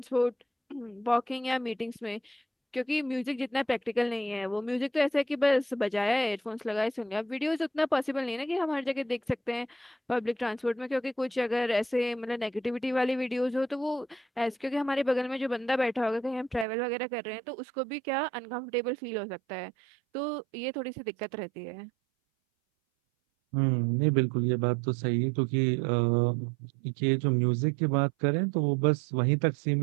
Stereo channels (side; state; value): left; drops out; at 16.7 s